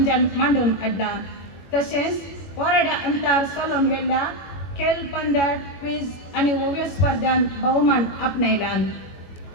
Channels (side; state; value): right; late; 22 ms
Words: मांडून हाडला। तशेंच वराड्या अंतर चलोवन गेल्ल्या खेळ पंद्या क्विज आणि ओव्यो स्पर्धांत भोवमान आपणयला।